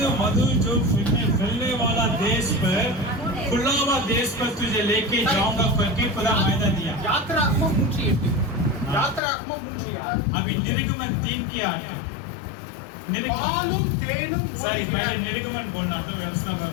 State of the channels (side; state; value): right; drops out; at 9.2 s